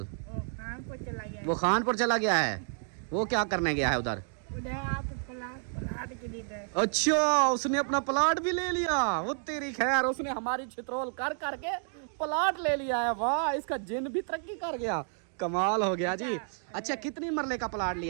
वो खानपुर चला गया है। वो क्या करने गया है उधर? प्लाट के लिए। अच्छा, उसने अपना प्लाट भी ले लिया। वो तेरी खैर, उसने हमारी छित्रोल कर करके प्लाट ले लिया है। वाह, इसका जिन भी तरक्की कर गया, कमाल हो गया जी। अच्छा, कितनी मरले का प्लाट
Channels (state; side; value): silent; left; 57 dB below the other